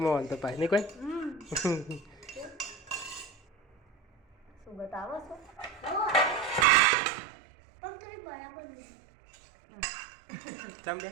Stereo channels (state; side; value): drops out; left; at 6.7 s